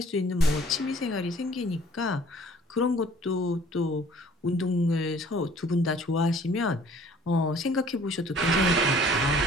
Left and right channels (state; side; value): normal; both; correlation 0.54